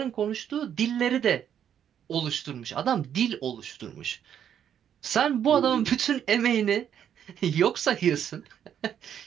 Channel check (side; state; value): left; quieter; 9.2 dB